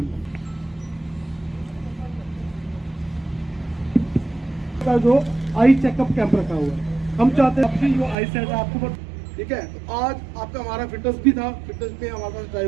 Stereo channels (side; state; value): left; drops out; at 8.2 s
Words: का जो आई चेकअप कैंप रखा हुआ है, हम चाहते हैं आपकी जो आई सेट है आपको ठीक है। तो आज आपका हमारा फिटनेस भी था, फिटनेस में हमारे पास